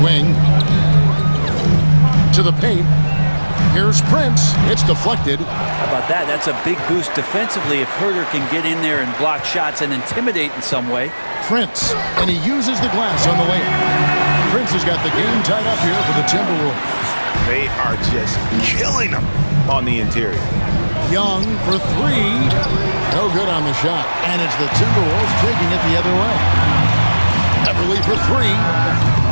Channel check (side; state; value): both; inverted; correlation -1.00